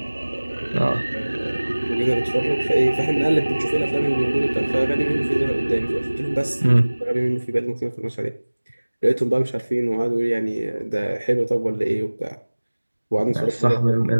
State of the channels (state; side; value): inverted; both; correlation -1.00